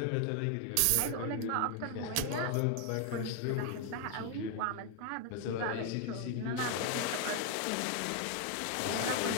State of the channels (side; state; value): both; different; correlation 0.00